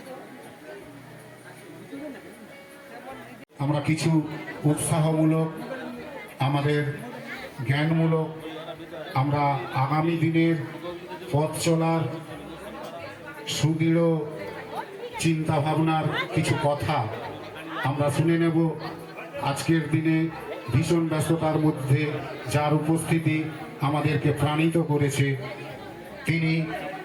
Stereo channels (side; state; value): both; identical; correlation 1.00